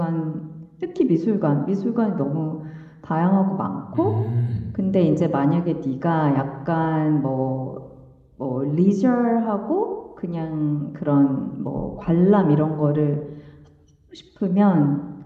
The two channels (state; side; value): identical; both; correlation 1.00